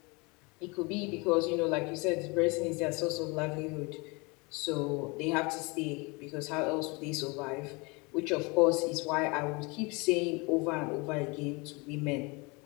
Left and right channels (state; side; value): quieter; right; 27.9 dB